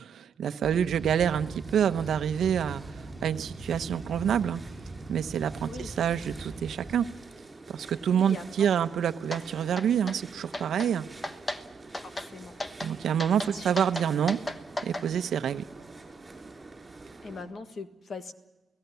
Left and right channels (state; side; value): quieter; left; 7.3 dB